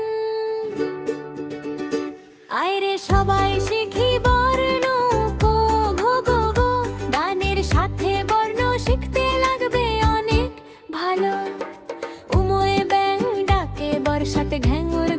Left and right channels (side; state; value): both; identical; correlation 1.00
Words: আয়রে সবাই শিখি বর্ণ কো ঘো গো গো, গানের সাথে বর্ণ শিখতে লাগবে অনেক ভালো। উমোয়ে ব্যাং ডাকে, বর্ষাতে ঘ্যাঙুর